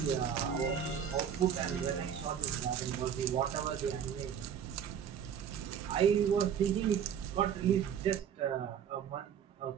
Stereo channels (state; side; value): quieter; left; 8.4 dB